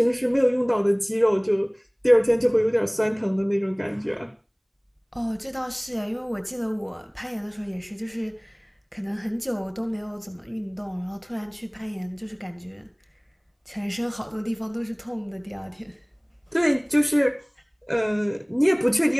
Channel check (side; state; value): both; identical; correlation 1.00